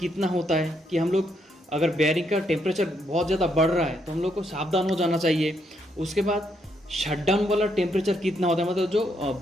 होता है कि हम लोग अगर बेयरिंग का टेम्परेचर बहुत ज़्यादा बढ़ रहा है तो हम लोग को सावधान हो जाना चाहिए। उसके बाद शटडाउन वाला टेम्परेचर कितना होता है, मतलब जो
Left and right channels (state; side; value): normal; both; correlation 0.76